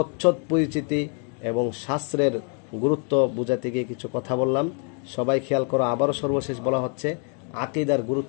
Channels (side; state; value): right; quieter; 38.2 dB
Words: পরিচিতি এবং শাস্ত্রের গুরুত্ব বোঝাতে গিয়ে কিছু কথা বললাম। সবাই খেয়াল করো, আবারও সর্বশেষ বলা হচ্ছে আকীদার